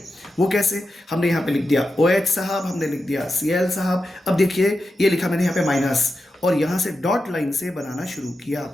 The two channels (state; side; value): normal; both; correlation 0.89